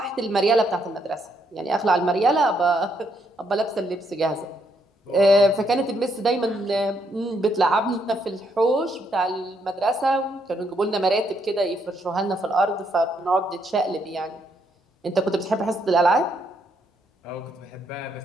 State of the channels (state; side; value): normal; both; correlation 0.74